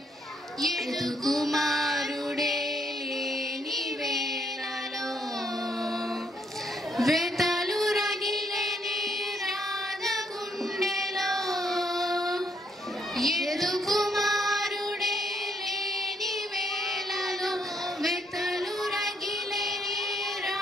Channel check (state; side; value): normal; both; correlation 0.72